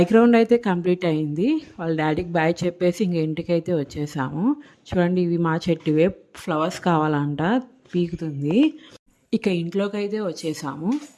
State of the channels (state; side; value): identical; both; correlation 1.00